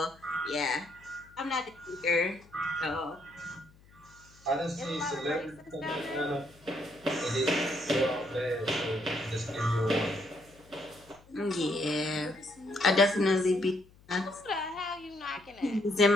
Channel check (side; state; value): left; noise; hum, 26 dB below the sound